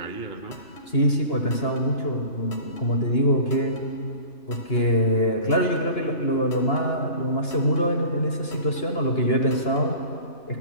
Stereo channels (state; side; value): late; right; 2.9 ms